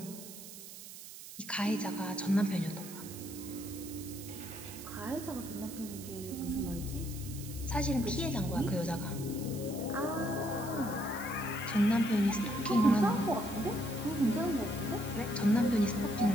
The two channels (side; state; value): right; noise; hiss, 13 dB below the sound